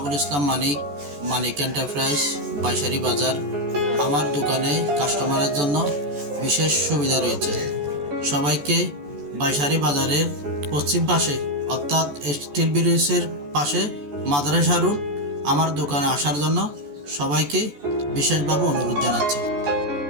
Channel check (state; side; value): late; left; 14 ms